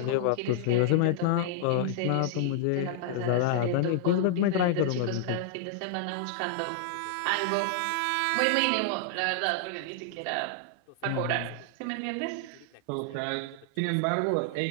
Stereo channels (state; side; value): different; both; correlation -0.01